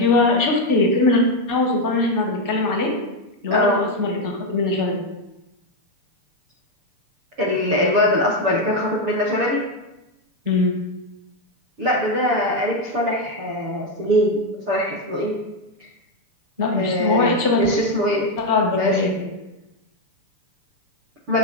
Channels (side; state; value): left; late; 6.9 ms